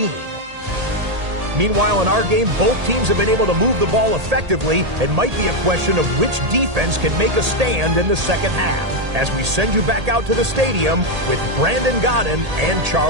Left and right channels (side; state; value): left; late; 1.8 ms